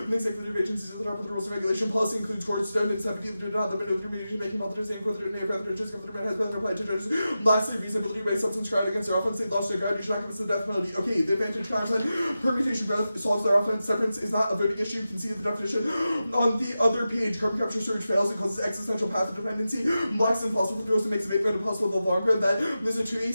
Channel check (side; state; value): both; inverted; correlation -0.92